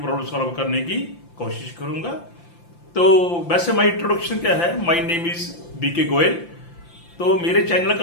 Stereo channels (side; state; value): right; late; 5.8 ms